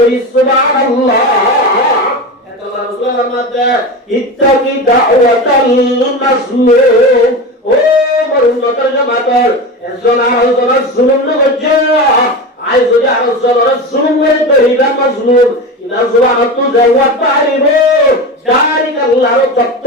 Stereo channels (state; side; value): normal; both; correlation 0.25